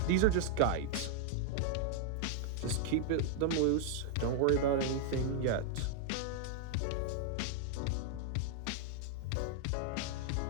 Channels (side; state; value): both; different; correlation 0.00